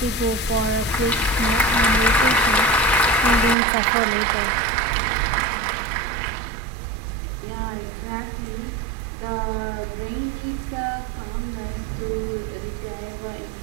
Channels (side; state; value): left; drops out; at 3.6 s